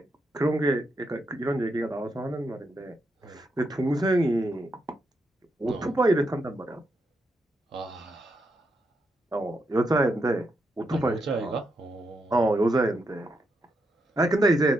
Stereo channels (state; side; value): normal; both; correlation 0.82